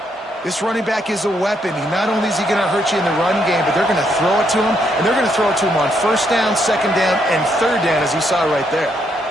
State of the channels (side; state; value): both; normal; correlation 0.75